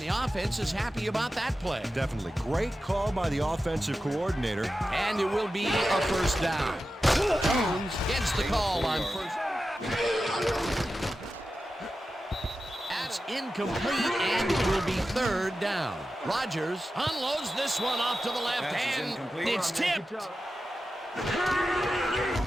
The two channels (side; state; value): both; normal; correlation 0.92